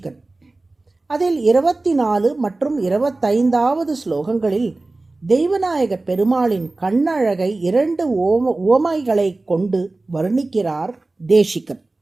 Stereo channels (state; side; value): quieter; left; 3.1 dB